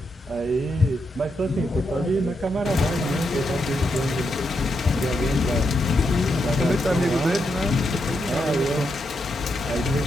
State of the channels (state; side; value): normal; both; correlation 0.82